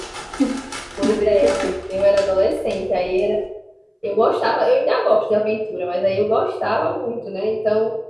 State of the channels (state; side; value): identical; both; correlation 1.00